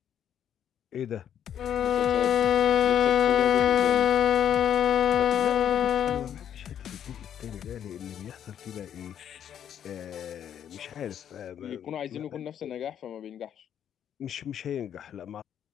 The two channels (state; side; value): quieter; right; 9.4 dB